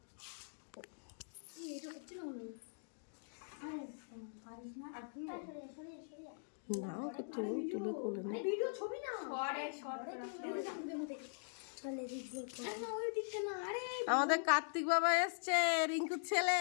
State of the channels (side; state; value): right; silent; digital silence